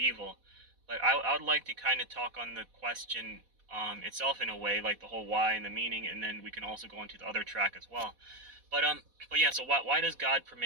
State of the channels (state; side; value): late; left; 4.1 ms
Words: But I would like to kind of talk on the question itself in a way, like the whole why and the meaning, and then we can also go into the other track as well. But yeah, so why does God